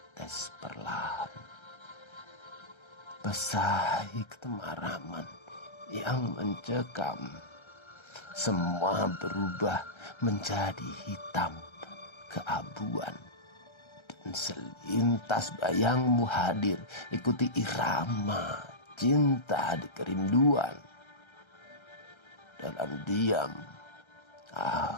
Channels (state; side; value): late; right; 1.3 ms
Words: perlahan, basahi ketemaraman yang mencekam. Semua berubah menjadi hitam keabuan, dan selintas bayangmu hadir, ikuti irama cinta di kerinduan. Dalam diam